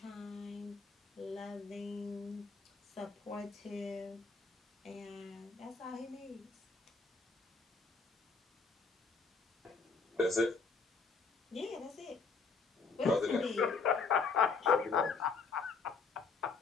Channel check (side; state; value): right; quieter; 4.6 dB